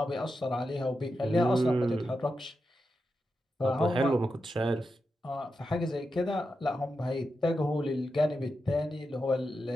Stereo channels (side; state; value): both; normal; correlation 0.88